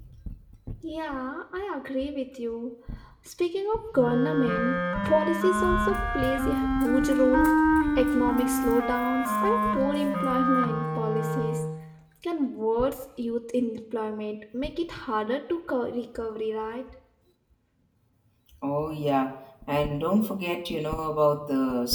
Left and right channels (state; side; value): identical; both; correlation 1.00